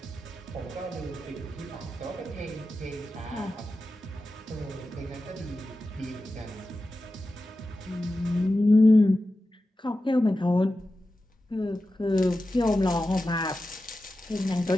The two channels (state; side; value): normal; both; correlation 0.93